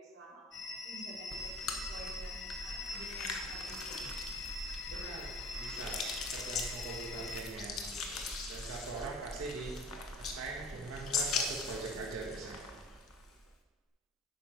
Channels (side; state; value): both; normal; correlation 0.42